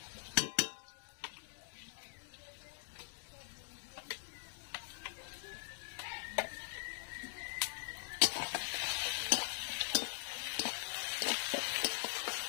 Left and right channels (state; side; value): silent; right; digital silence